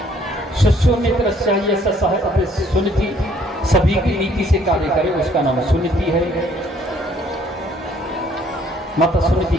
सुमित्र चाहिए सुनीति, सभी की नीति से कार्य करे, उसका नाम सुनीति है। माता सुनीति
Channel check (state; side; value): normal; both; correlation 0.62